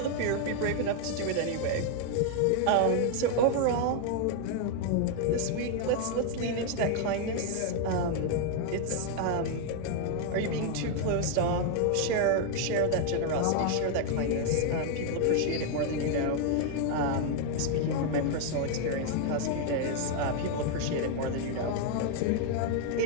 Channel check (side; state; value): both; different; correlation 0.00